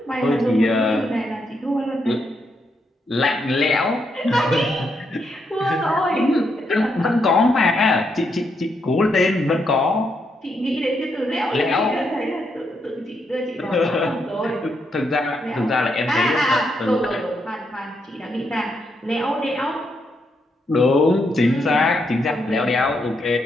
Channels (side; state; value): both; normal; correlation 0.79